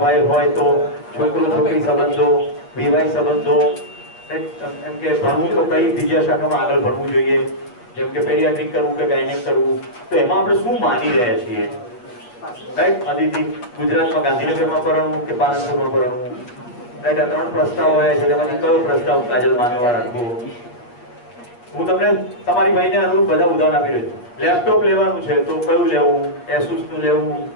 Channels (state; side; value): late; right; 8.4 ms